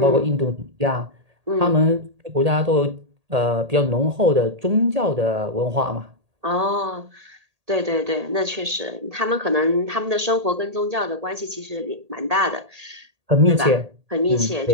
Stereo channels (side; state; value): left; late; 1.8 ms